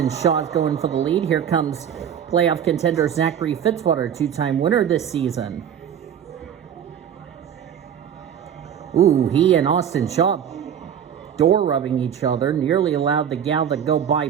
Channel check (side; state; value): left; quieter; 8.9 dB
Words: Shaw's going for the lead, here comes playoff contender Zachary Fitzwater, 2-time winner this season. Ooh, he and Austin Shaw door rubbing each other, nearly allowed the gal to go by